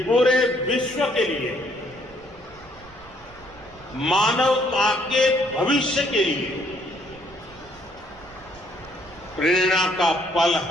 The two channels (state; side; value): noise; right; rumble, 24 dB below the sound